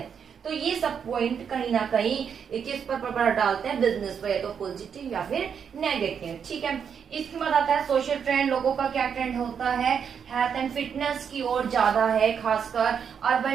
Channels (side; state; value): left; quieter; 7.3 dB